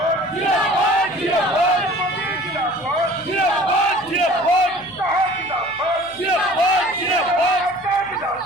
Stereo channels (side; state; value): left; noise; hum, 27 dB below the sound